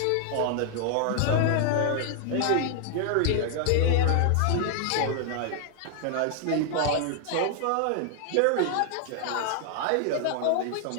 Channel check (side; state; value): both; different; correlation 0.00